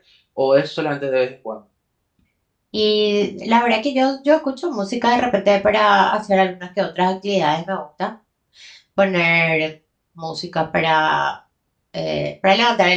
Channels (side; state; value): both; identical; correlation 1.00